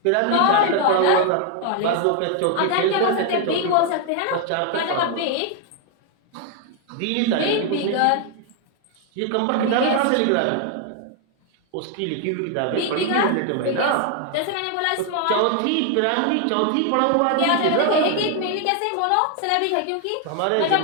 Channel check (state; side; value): different; both; correlation 0.00